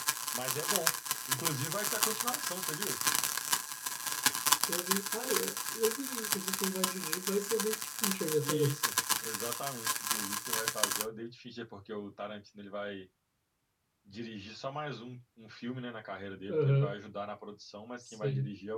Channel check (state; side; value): identical; both; correlation 1.00